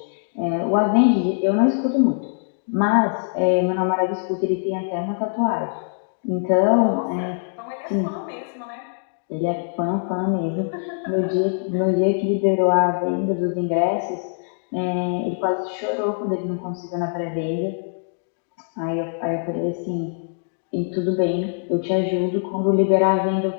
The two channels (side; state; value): right; silent; digital silence